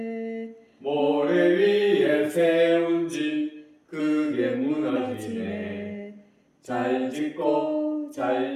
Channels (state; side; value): identical; both; correlation 1.00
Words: 모래 위에 세운 집 크게 무너지네. 잘 짓고